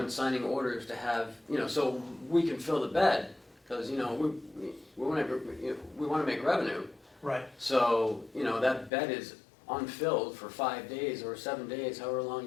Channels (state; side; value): drops out; right; at 8.9 s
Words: signing orders to have, you know, so we can fill the bed, because, you know, we want to make revenue. Right, So, you know, that bed is unfilled for 5 days or 7 days, however long